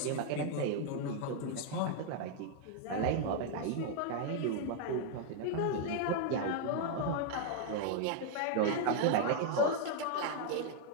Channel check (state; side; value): different; both; correlation 0.00